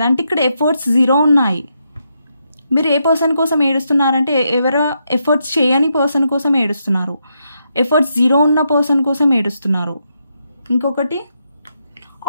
అంటే ఇక్కడ ఎఫర్ట్స్ 0 ఉన్నాయి. మీరు ఏ పర్సన్ కోసం ఏడుస్తున్నారంటే ఎవరో ఎఫర్ట్స్ చేయని పర్సన్ కోసం ఏడుస్తున్నారు, ఎఫర్ట్స్ 0 ఉన్న పర్సన్ కోసం ఏడుస్తున్నారు. ఇంకొకటి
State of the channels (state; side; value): inverted; both; correlation -0.81